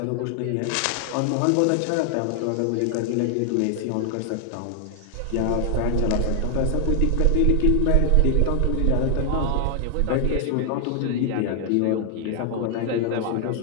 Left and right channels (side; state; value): both; different; correlation 0.00